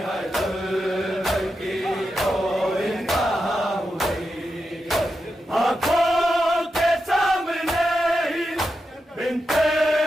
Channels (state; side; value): normal; both; correlation 0.88